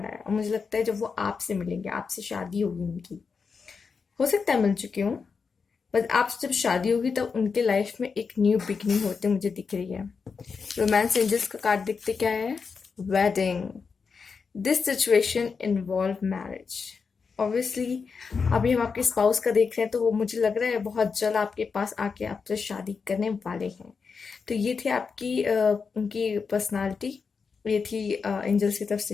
आया और मुझे लगता है जब वो आपसे मिलेंगे, आपसे शादी होगी उनकी। हो सकता है मिल चुकी हूँ, बट आपसे जब शादी होगी तब उनके लाइफ में एक न्यू बिगनिंग होते मुझे दिख रही है। रोमांस एंजल्स का कार्ड दिखते क्या है? Wedding. This situation involve marriage. Obviously अभी हम आपके स्पाउस का देख रहे हैं तो वो मुझे लग रहा है बहुत जल्द आपके पास आके आपसे शादी करने वाले हैं। तो ये थी आपकी उनकी पर्सनालिटी। ये थी एंजल्स की तरफ से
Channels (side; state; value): right; quieter; 5.4 dB